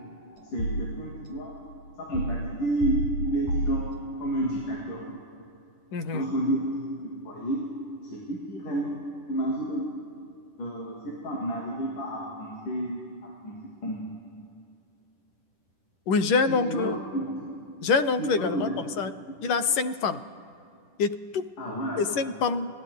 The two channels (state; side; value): late; right; 10 ms